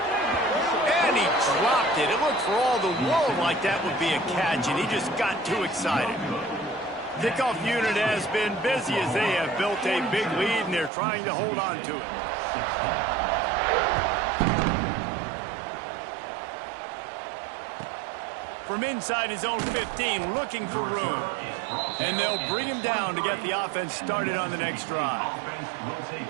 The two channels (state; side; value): drops out; left; at 10.9 s